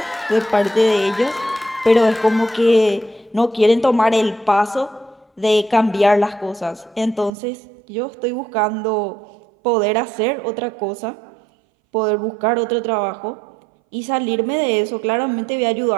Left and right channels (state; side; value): drops out; left; at 7.3 s